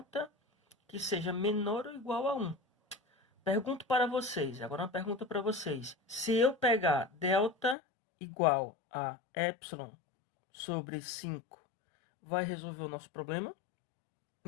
que seja menor ou igual a 1. Pergunto para vocês, agora uma pergunta para vocês. Se eu pegar delta igual a epsilon sobre 5, vai resolver o nosso problema?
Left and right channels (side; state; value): right; drops out; at 7.8 s